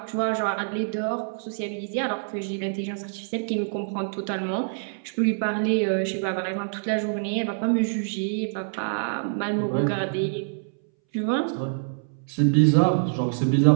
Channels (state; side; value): silent; left; 61 dB below the other